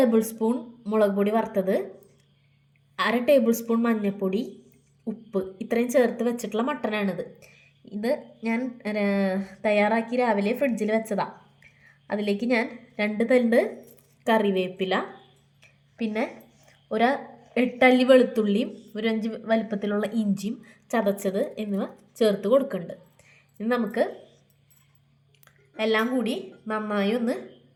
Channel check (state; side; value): identical; both; correlation 1.00